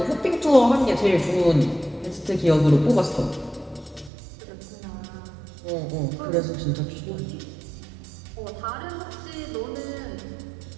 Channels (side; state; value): left; drops out; at 4.1 s